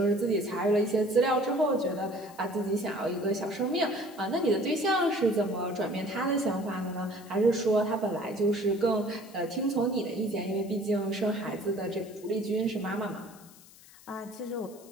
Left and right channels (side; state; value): left; noise; hiss, 22 dB below the sound